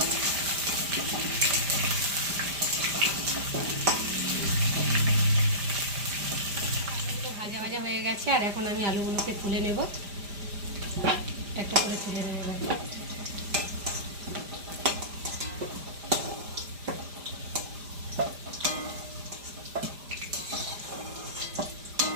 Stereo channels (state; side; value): late; left; 5.0 ms